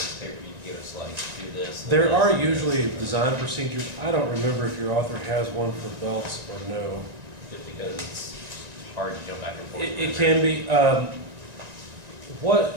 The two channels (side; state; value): left; late; 1.9 ms